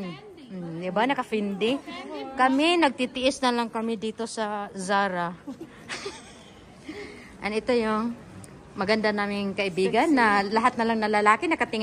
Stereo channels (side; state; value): both; identical; correlation 1.00